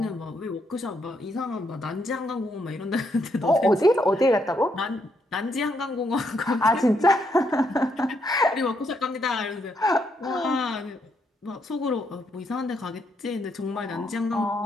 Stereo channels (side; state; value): both; normal; correlation 0.76